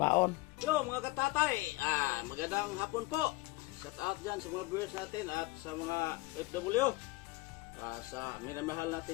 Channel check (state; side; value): quieter; right; 21.5 dB